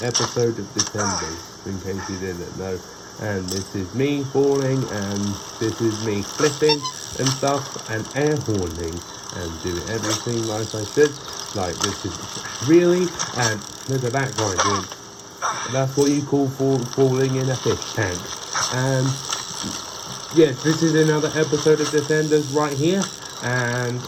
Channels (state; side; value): identical; both; correlation 1.00